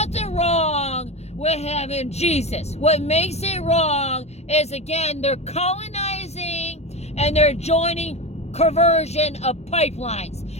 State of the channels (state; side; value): late; right; 0.31 ms